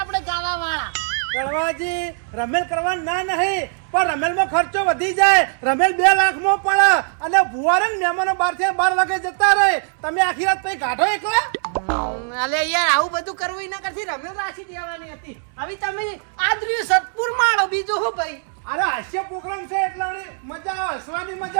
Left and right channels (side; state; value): left; silent; 62 dB below the other